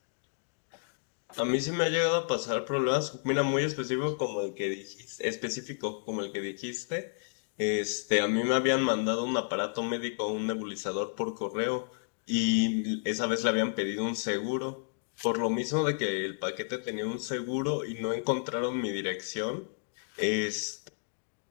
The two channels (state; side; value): silent; right; digital silence